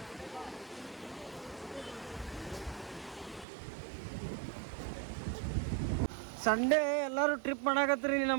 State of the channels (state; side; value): drops out; left; at 3.5 s